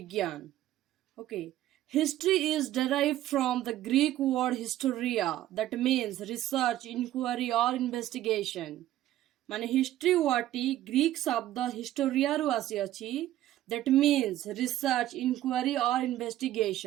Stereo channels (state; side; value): quieter; left; 13.7 dB